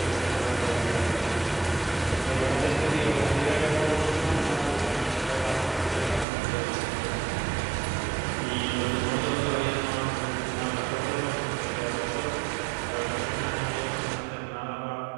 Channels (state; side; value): drops out; left; at 6.2 s